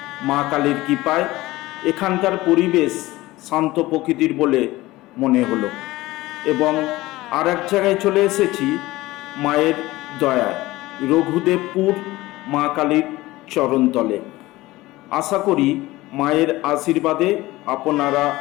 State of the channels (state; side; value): quieter; right; 18.6 dB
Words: মা কালীর কৃপায়। এখানকার পরিবেশ শান্ত প্রকৃতির বলে মনে হলো এবং আর এক জায়গায় চলে এসেছি মায়ের দয়ায়, রঘুদেবপুর মা কালীর চরণতলে। আশা করি মায়ের আশীর্বাদে আপনারা